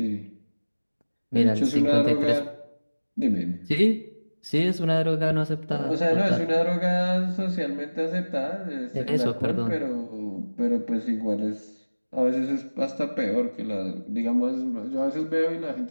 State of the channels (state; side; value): inverted; both; correlation -1.00